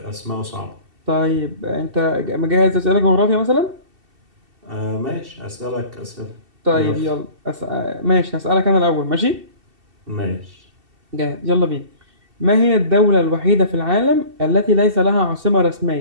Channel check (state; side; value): late; left; 2.7 ms